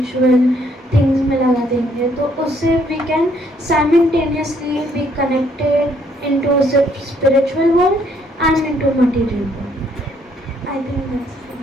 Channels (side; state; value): both; normal; correlation 0.68